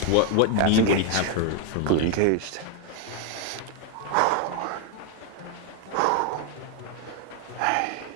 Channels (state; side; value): different; both; correlation 0.01